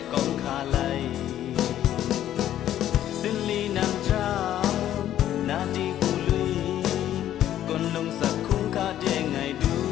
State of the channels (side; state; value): right; quieter; 11.8 dB